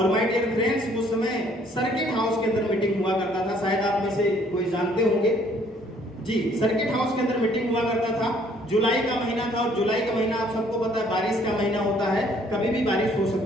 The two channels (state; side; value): normal; both; correlation 0.62